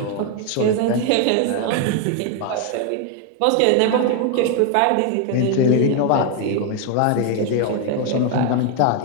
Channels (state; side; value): different; both; correlation 0.01